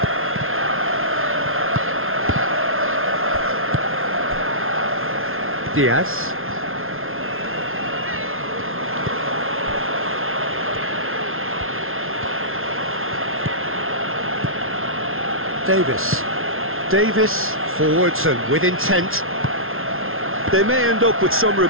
Diaz. Davis. Davis forwards and with intent. They may end up with some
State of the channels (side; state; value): left; late; 0.61 ms